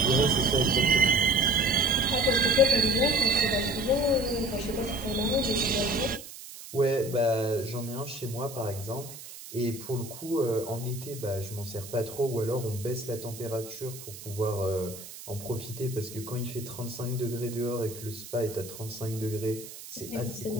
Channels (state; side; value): noise; right; hiss, 14 dB below the sound